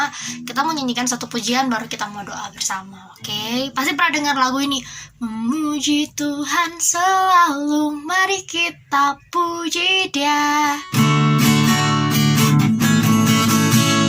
kita menyanyikan satu pujian baru kita mau doa bersama. Oke, pasti pernah dengar lagu ini. Memuji Tuhan selalu, mari kita puji Dia.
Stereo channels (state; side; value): identical; both; correlation 1.00